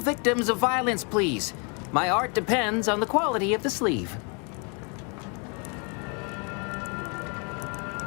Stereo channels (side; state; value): right; quieter; 35.4 dB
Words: of violence, please. My art depends on the quality of the sleeve.